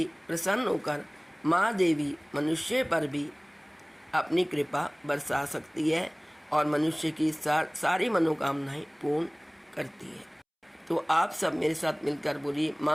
प्रसन्न होकर माँ देवी मनुष्य पर भी अपनी कृपा बरसा सकती है और मनुष्य की सारी मनोकामनाएं पूर्ण करती है। तो आप सब मेरे साथ मिलकर बोलिए,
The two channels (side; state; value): both; identical; correlation 1.00